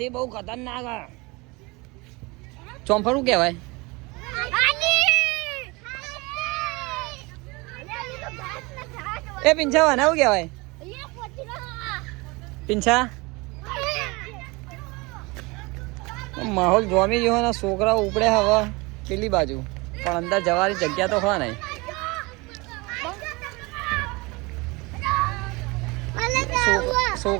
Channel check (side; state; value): left; quieter; 25.3 dB